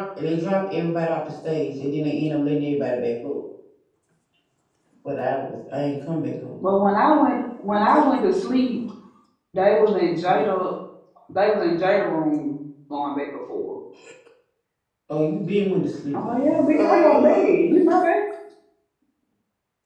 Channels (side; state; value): both; identical; correlation 1.00